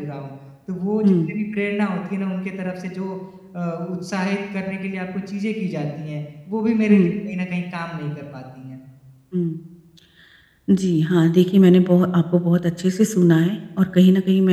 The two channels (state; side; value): identical; both; correlation 1.00